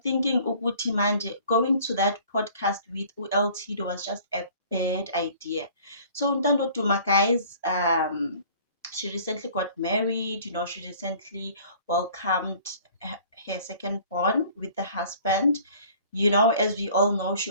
thinking Uguti Manje going to that podcast with ULT was just a bad idea. So Ntando Duma, guys, she recently got married. She recently welcomed her second born with the husband. As we all know, she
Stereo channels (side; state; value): both; inverted; correlation -0.51